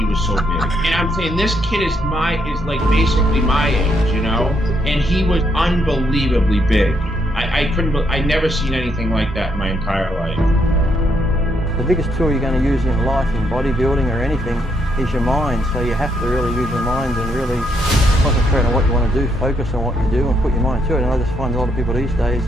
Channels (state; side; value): normal; both; correlation 0.75